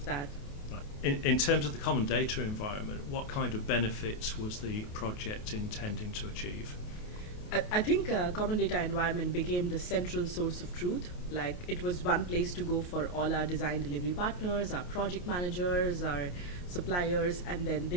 that. Right. In terms of the common data environment, what kind of benefits was the project intending to achieve? I think common data environment became the central source of truth. Like, it was one place to go for all our design delivery partners, our project managers, our suppliers, and then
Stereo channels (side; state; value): right; late; 28 ms